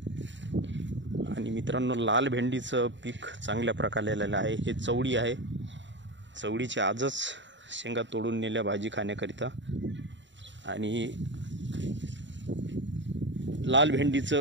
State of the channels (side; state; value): left; late; 0.53 ms